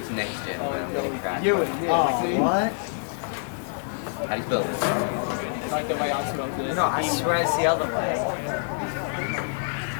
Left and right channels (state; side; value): silent; right; digital silence